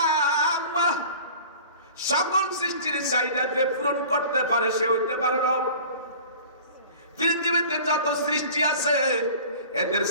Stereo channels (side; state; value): both; inverted; correlation -0.42